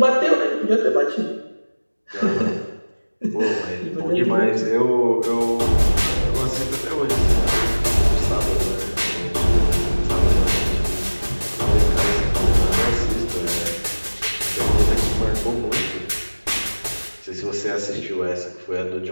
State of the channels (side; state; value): both; inverted; correlation -1.00